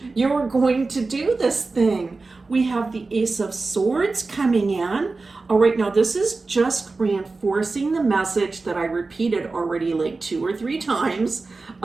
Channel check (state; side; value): quieter; left; 3.8 dB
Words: You're going to do this thing. We have the Ace of Swords coming in. All right, now this is just reinforcing the message that I repeated already like 2 or 3 times